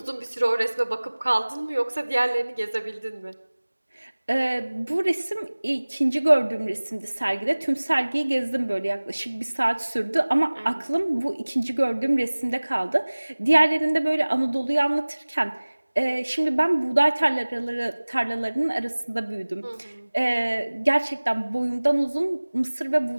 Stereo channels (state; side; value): inverted; both; correlation -1.00